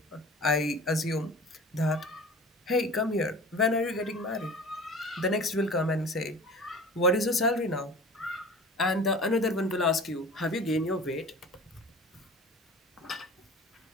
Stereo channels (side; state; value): both; normal; correlation 0.40